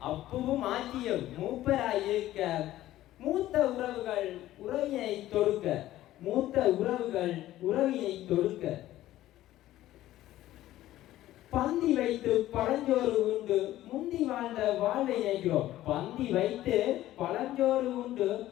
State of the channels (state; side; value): quieter; right; 14.5 dB